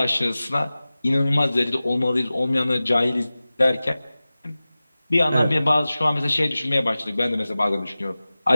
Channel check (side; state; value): both; inverted; correlation -0.97